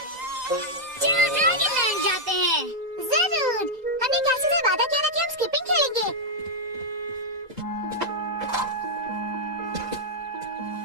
चलो ड्रैगन लैंड जाते हैं। जरूर। हमने कैसे से वादा किया था कि हम स्किपिंग खेलेंगे।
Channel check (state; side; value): late; left; 2.0 ms